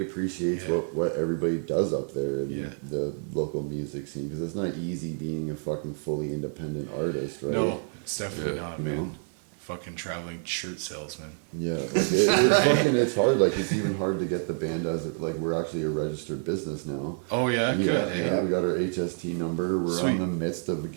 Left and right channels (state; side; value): silent; left; digital silence